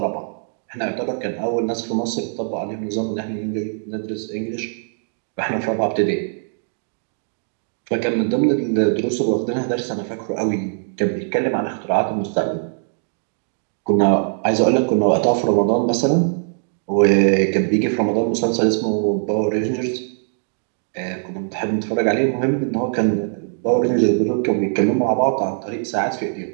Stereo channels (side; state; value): left; silent; digital silence